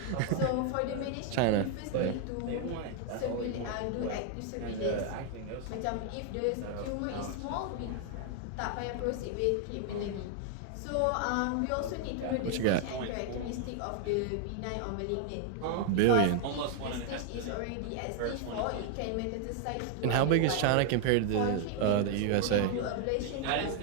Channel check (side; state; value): both; different; correlation 0.00